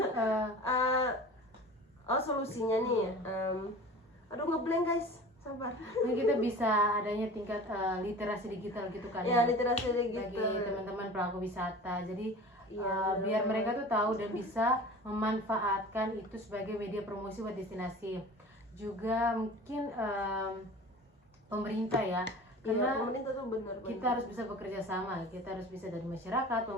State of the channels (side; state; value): both; normal; correlation 0.39